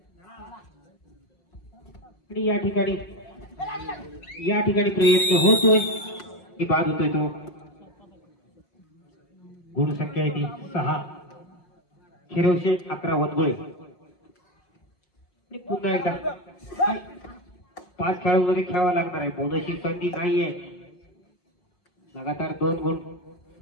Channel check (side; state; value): right; late; 5.6 ms